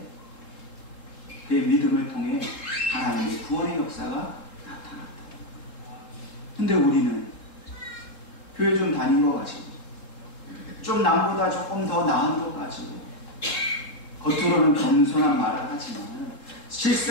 그의 믿음을 통해 하나님의 구원의 역사가 나타났다. 근데 우리는 교회 좀 다닌 거 가지고 좀 남보다 조금 더 나은 것 가지고 겉으로는 겸손한 말을 하지만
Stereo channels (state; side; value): late; right; 3.7 ms